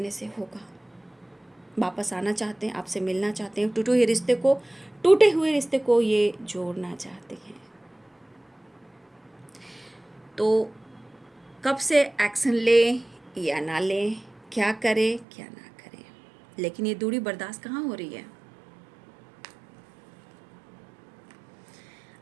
से होगा। वापस आना चाहते हैं, आपसे मिलना चाहते हैं, टूटे हुए रिश्ते को ये जोड़ना चाहते हैं। तो कब से एक्शन ले या ना ले, क्या करे क्या ना करे, लेकिन ये दूरी बर्दाश्त कहाँ हो रही है।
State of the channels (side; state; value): left; drops out; at 15.2 s